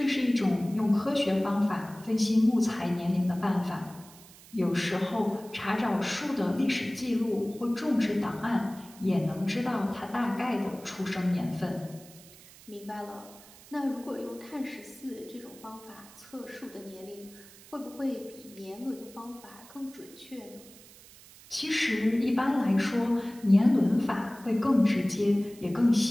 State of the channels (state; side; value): noise; right; hiss, 21 dB below the sound